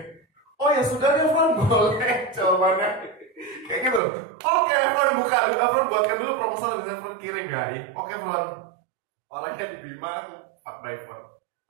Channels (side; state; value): left; drops out; at 4.0 s